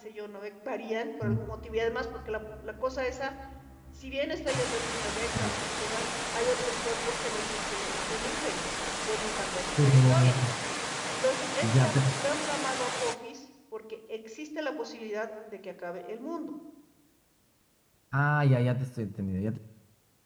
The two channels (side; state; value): both; identical; correlation 1.00